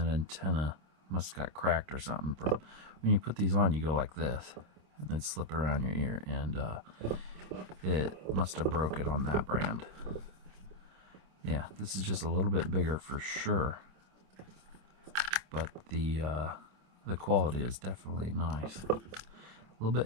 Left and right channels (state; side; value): late; left; 26 ms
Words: antenna must have got cracked or something. From when you put these on, you go like this. And then slip it around your ear. And it must have broke it on that brand. Yeah, this is just a little bit bigger for sure. But the quality is definitely nice. A little